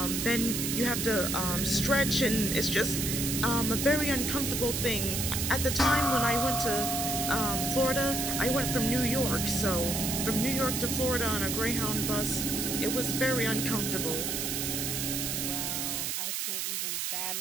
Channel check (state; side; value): noise; right; hiss, 1 dB below the sound